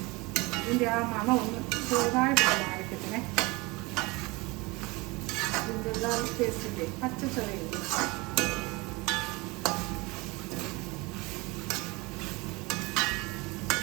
ഇതിൻ്റെ ആ മണം ഒന്ന് ചെറുതായിട്ട് മാറിക്കത്തിനെ. ജിഞ്ചർ ഗാർലിക് പേസ്റ്റിൻ്റെ പച്ച ചൊവയില്ല.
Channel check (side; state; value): left; quieter; 24.2 dB